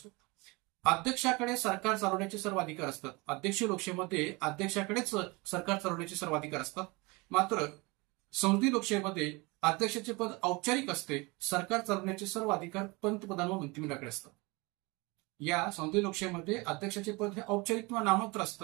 अध्यक्षाकडे सरकार चालवण्याचे सर्व अधिकार असतात. अध्यक्ष लोकशाहीमध्ये अध्यक्षाकडेच सरकार चालवण्याचे सर्व अधिकार असतात. मात्र संसदीय लोकशाहीमध्ये अध्यक्षाचे पद औपचारिक असते. सरकार चालवण्याचे सर्व अधिकार पंतप्रधान व मंत्रिमंडळाकडे असतात. या संसदीय लोकशाहीमध्ये अध्यक्षाचे पद हे औपचारिक किंवा नाममात्र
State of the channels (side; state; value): left; quieter; 25.7 dB